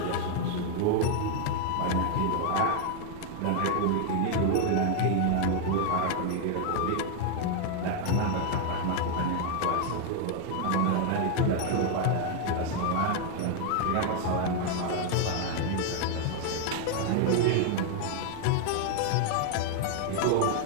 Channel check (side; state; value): both; different; correlation 0.00